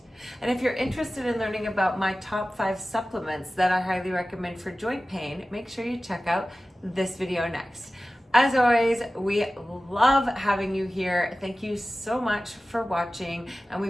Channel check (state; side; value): normal; both; correlation 0.96